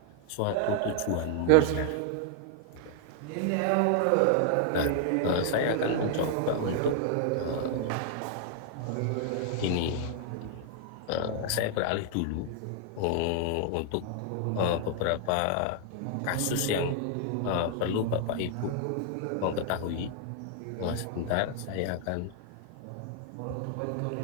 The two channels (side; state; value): both; different; correlation 0.00